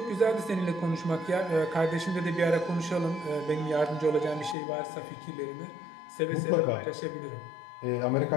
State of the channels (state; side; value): drops out; right; at 4.5 s